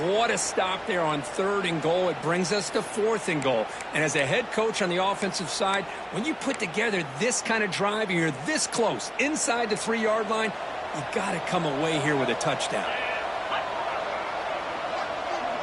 what a stop there on third and goal. It brings us to fourth and goal. And as a head coach on the offensive side, when you put together this kind of drive and you're this close inside the 3-yard line, you got to come away here with a touchdown.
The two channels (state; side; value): identical; both; correlation 1.00